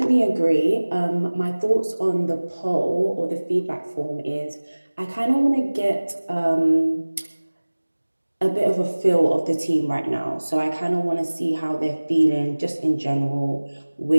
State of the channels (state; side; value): inverted; both; correlation -1.00